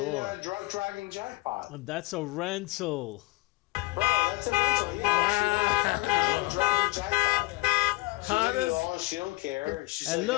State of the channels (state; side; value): quieter; right; 22.9 dB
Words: drunk driving jackpot. That's a rental. Bro, that's a rental. Yeah. Drunk driving jackpot. She did it all. She don't care. She's And